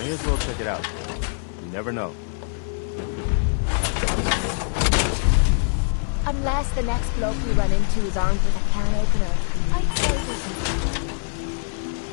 as well check it out. You never know. Unless the next bloke we run into is armed with a can opener, I'd say we can.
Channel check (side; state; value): right; silent; 58 dB below the other